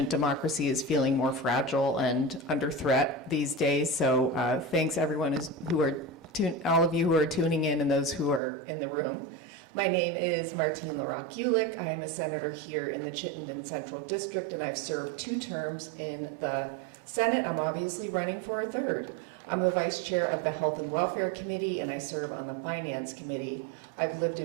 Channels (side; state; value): left; drops out; at 8.4 s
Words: Democracy is feeling more fragile and under threat these days, so thanks everyone all of you who are tuning in and those who are in the room. My name is Martine LaRocque-Ulick. I am a senator here in the Chittenden-Central District, and I've served 2 terms in the Senate. I'm obviously running for a 3rd. I'm the vice chair of the Health and Welfare Committee, and I serve on the Finance Committee. I've lived